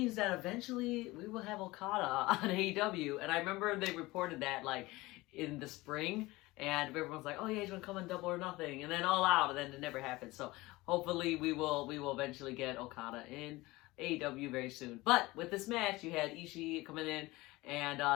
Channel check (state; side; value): quieter; right; 20.5 dB